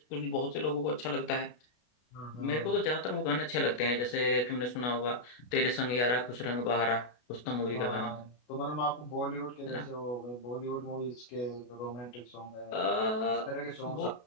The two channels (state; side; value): late; right; 33 ms